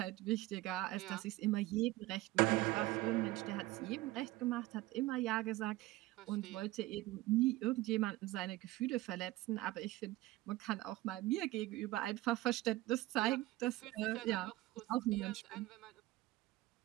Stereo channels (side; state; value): left; quieter; 18.2 dB